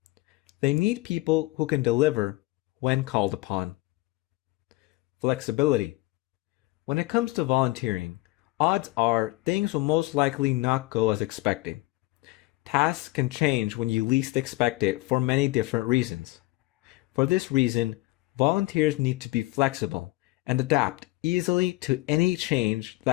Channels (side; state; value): right; quieter; 20.8 dB